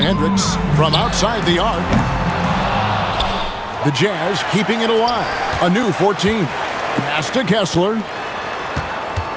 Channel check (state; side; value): identical; both; correlation 1.00